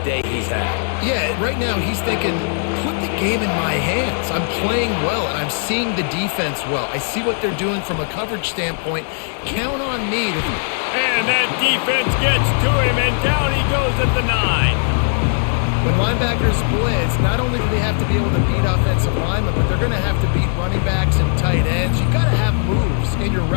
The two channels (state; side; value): silent; right; 63 dB below the other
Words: day he's had. Yeah, right now he's thinking, put the game in my hands. I'm playing well, and I'm seeing the defense well. I see what they're doing from a coverage standpoint. Count on me to... And that defense gets to him, and down he goes at the 9. When linebackers blitz, not only do they have to be able to beat offensive linemen, but they're going to have to beat running backs and tight ends. You've got to have moves in your